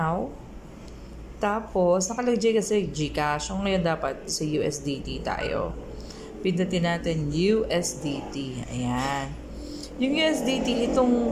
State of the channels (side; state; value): both; identical; correlation 1.00